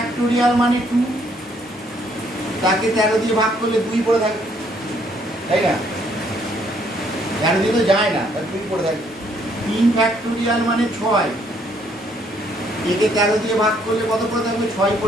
মানে 2, তাকে 13 দিয়ে ভাগ করলে 2 পড়ে থাকবে, তাই না? 13 দিয়ে তো যায় না, তার 2 পড়ে থাকবে। 3 ফ্যাক্টোরিয়াল মানে 6, একে 13 দিয়ে ভাগ করলে কত পড়ে থাকবে? 6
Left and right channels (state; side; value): normal; both; correlation 0.67